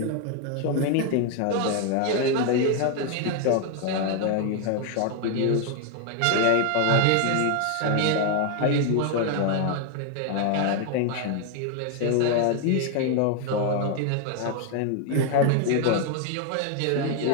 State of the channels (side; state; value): both; different; correlation 0.01